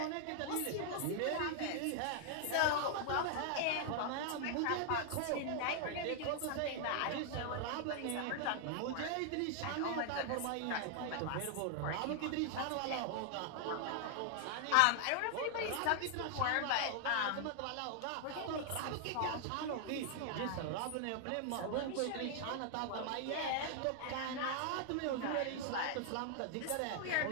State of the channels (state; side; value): different; both; correlation 0.00